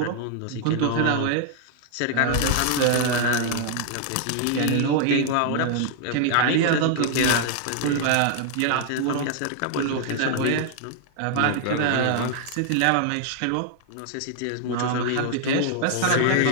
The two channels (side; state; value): both; different; correlation 0.00